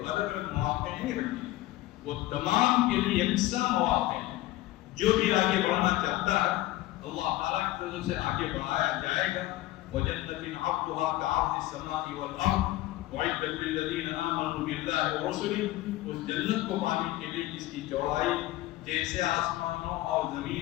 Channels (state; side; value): quieter; right; 16.5 dB